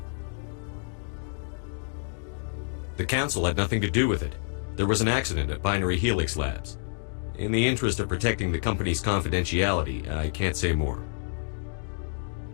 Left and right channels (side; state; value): right; silent; digital silence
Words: The Council had nothing to do with it. There was an accident at Binary Helix Labs. In the interest of protecting the company's confidentiality, I can't say more.